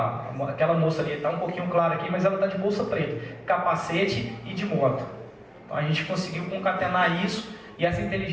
Aquela moça ali está um pouquinho clara aqui, mas ela está de bolsa preta, capacete e de moto. Então a gente conseguiu concatenar isso e essa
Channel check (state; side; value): identical; both; correlation 1.00